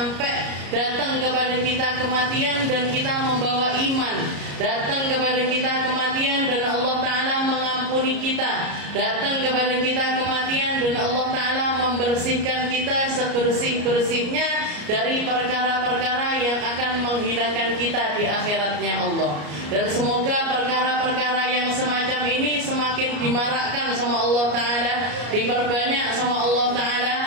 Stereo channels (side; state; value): left; late; 34 ms